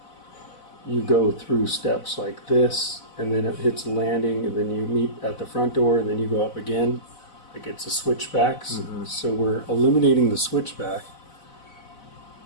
go through steps like this, and then it hits a landing, and then you meet at the front door, and then you go up again. Like it's a switchback. So we're eliminating the switchback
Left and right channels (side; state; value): right; late; 4.0 ms